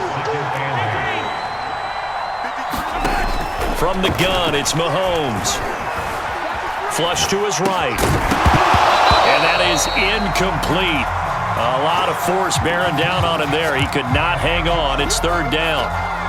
From the gun, it's Mahomes. Flush to his right. And that is incomplete. A lot of force bearing down on him there. He could not hang on. It's 3rd down.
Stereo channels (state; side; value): identical; both; correlation 1.00